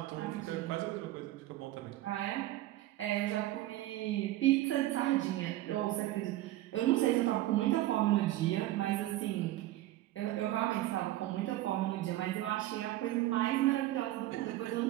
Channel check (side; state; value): left; quieter; 15.6 dB